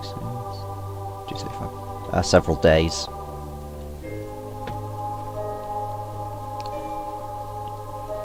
235. Several days.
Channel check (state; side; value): identical; both; correlation 1.00